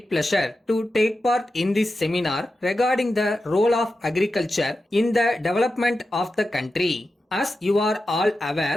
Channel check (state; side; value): normal; both; correlation 0.91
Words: pleasure to take part in this seminar regarding the role of agriculture in the development of the country. As you are all